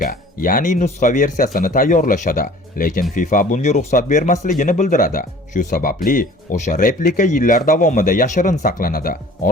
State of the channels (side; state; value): both; normal; correlation 0.48